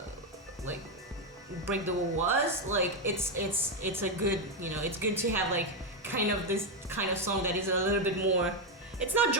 like Break the Wall was like. It's a good it's good to have like kind of this kind of song that is a little bit more. It's not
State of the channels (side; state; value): both; normal; correlation 0.05